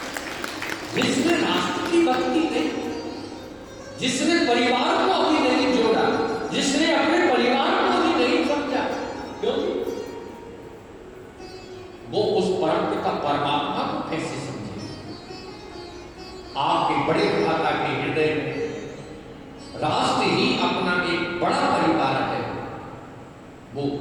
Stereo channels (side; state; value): both; identical; correlation 1.00